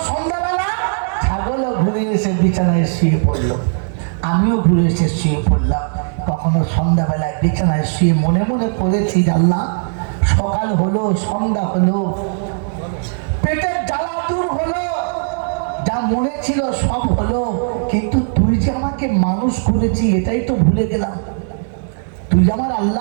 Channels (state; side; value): silent; left; 68 dB below the other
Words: সন্ধ্যাবেলা ছাগলও ঘুরে এসে বিছানায় শুয়ে পড়লো, আমিও ঘুরে এসে শুয়ে পড়লাম। কখনো সন্ধ্যাবেলায় বিছানায় শুয়ে মনে মনে করেছি, আল্লাহ সকাল হলো, সন্ধ্যা হলো, পেটের জ্বালা দূর হলো, যা মনে ছিল সব হলো, কিন্তু তুই যে আমাকে মানুষ করেছি এটাই তো ভুলে গেলাম। তুই যে আমার